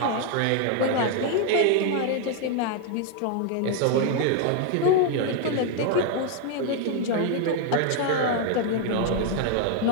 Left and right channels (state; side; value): different; both; correlation 0.00